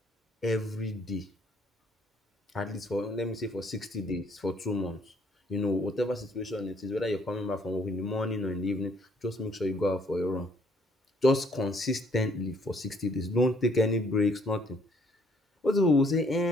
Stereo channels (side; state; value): both; normal; correlation 0.65